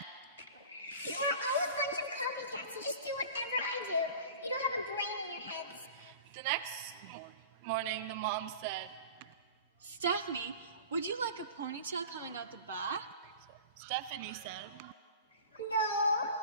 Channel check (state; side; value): inverted; both; correlation -0.38